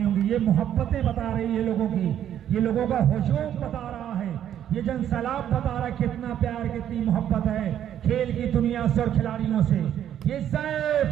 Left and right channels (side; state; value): left; quieter; 10.4 dB